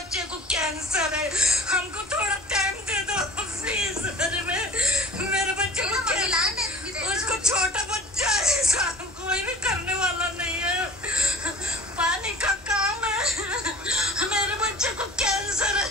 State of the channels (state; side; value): normal; both; correlation 0.44